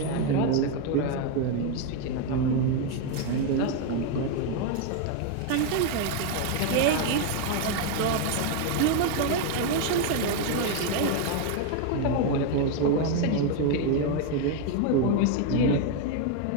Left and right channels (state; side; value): different; both; correlation 0.01